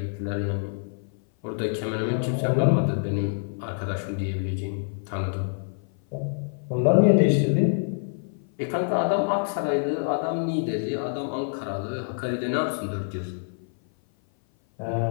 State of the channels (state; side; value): silent; right; 56 dB below the other